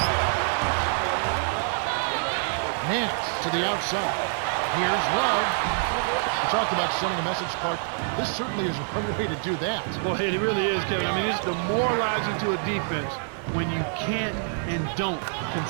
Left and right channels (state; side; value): silent; left; digital silence